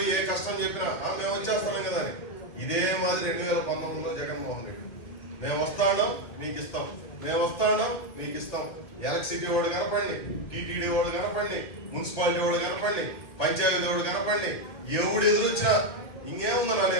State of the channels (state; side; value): late; right; 1.8 ms